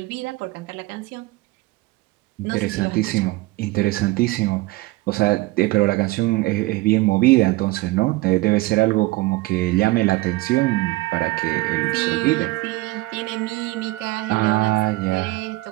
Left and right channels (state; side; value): quieter; left; 20.3 dB